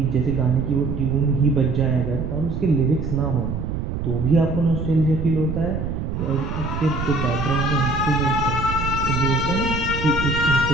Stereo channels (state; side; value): noise; right; rumble, 4 dB below the sound